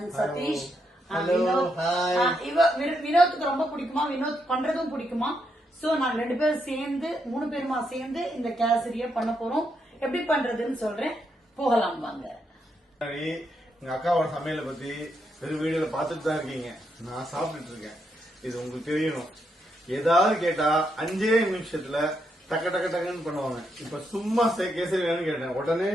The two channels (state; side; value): normal; both; correlation 0.80